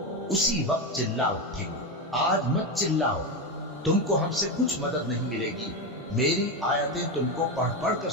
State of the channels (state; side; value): normal; both; correlation 0.13